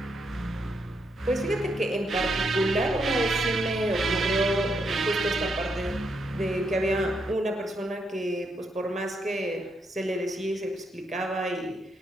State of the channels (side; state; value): both; normal; correlation 0.79